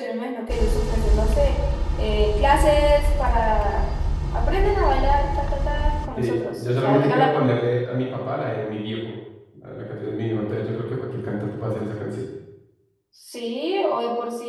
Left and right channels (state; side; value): identical; both; correlation 1.00